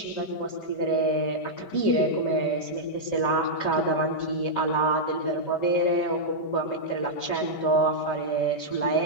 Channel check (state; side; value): late; right; 5.2 ms